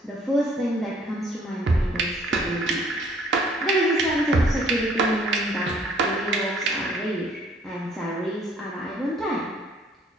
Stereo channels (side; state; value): both; normal; correlation 0.60